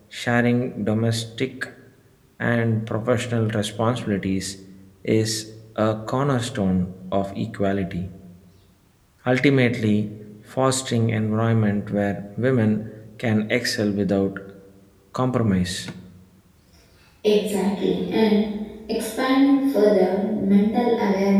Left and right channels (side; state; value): both; identical; correlation 1.00